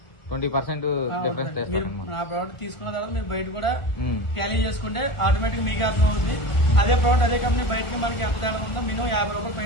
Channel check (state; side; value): late; right; 1.5 ms